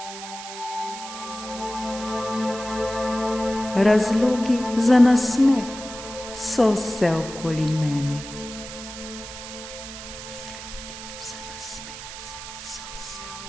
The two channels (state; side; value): noise; right; hiss, 11 dB below the sound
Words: Razlogi za nasmeh so vse okoli mene.